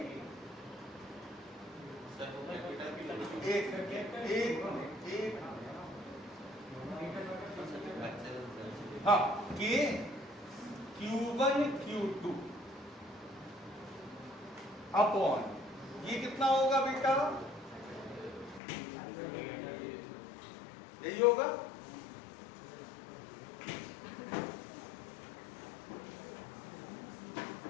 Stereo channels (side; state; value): right; drops out; at 18.6 s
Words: हाँ, के Q1 Q2 अपॉन, ये कितना होगा बेटा? यही होगा।